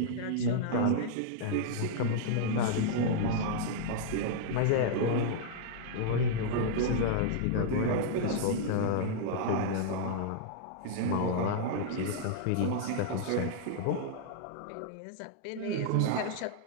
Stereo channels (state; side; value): different; both; correlation -0.01